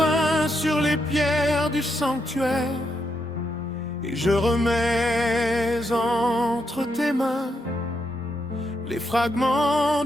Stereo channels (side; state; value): both; normal; correlation 0.80